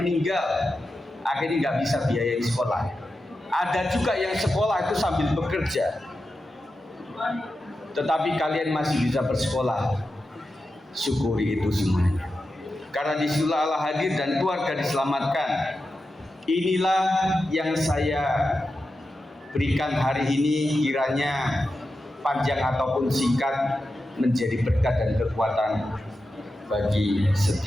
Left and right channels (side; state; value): both; normal; correlation 0.90